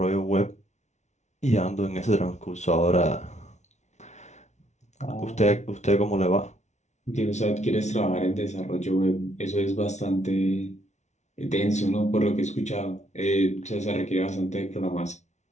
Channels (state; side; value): late; right; 0.33 ms